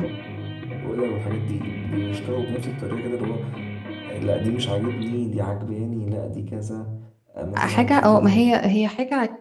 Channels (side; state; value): both; identical; correlation 1.00